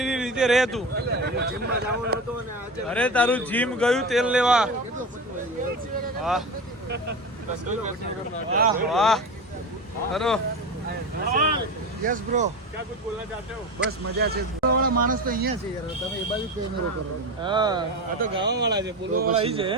રીતે રહે તું. અરે તારું જીમ ગયું તેલ લેવા. વાહ વાહ વાહ. ચલો યસ બ્રો. ક્યાં કુછ બોલના ચાહતે હો? બસ મજા છે. વાળા માણસ તો અહીંયા છે યાર, તમે એ બાજુ કેમેરો કરો. હા આ તો ગાવા વાળા છે, બોલવા વાળા અહીં છે.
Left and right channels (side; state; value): both; normal; correlation 0.26